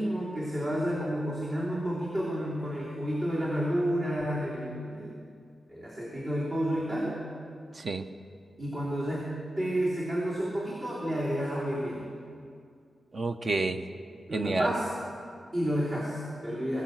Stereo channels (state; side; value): normal; both; correlation 0.91